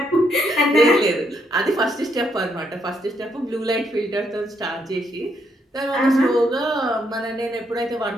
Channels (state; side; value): normal; both; correlation 0.75